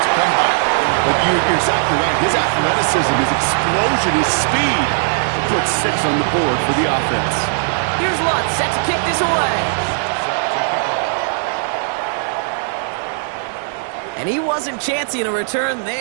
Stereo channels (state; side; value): silent; left; digital silence